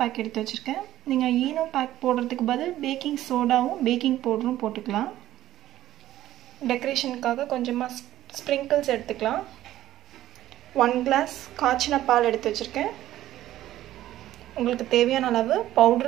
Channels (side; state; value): left; quieter; 13.7 dB